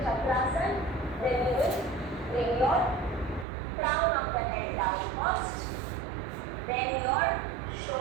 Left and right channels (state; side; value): drops out; left; at 3.5 s